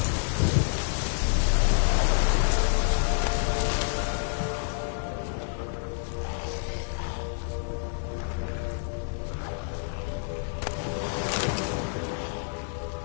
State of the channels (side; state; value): right; silent; digital silence